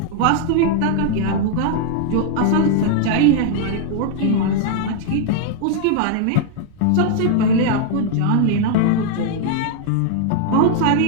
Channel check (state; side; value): different; both; correlation 0.00